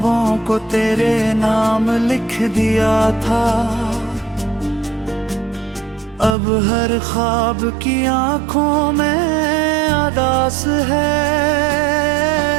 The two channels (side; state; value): left; drops out; at 6.4 s